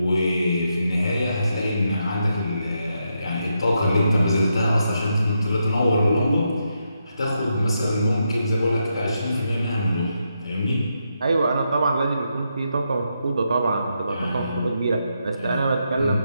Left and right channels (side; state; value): both; inverted; correlation -0.82